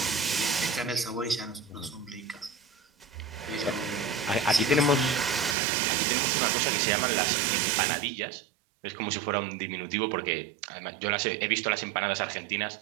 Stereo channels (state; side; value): drops out; left; at 5.6 s